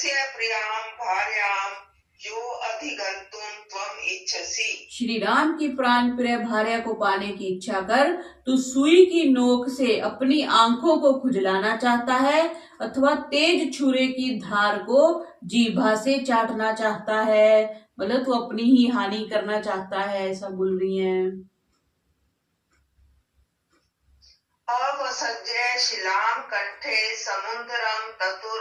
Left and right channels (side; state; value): both; identical; correlation 1.00